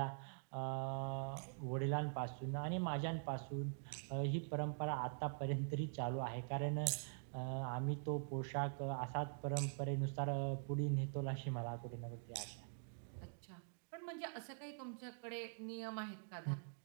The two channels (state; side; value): silent; left; digital silence